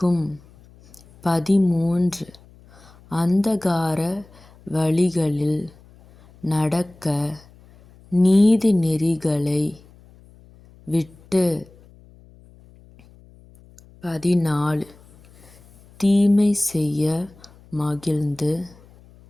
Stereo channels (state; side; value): noise; left; hum, 26 dB below the sound